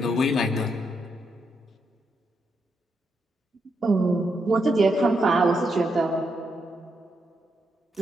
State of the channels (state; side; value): normal; both; correlation 0.81